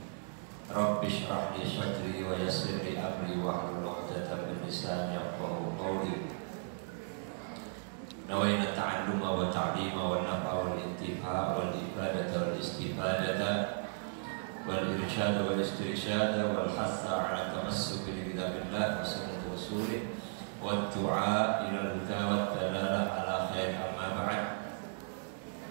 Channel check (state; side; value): silent; left; digital silence